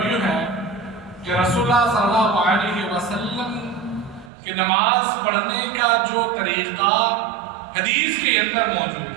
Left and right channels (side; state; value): left; drops out; at 4.3 s